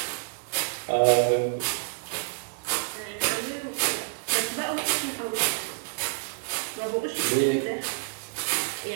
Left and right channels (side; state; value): left; silent; digital silence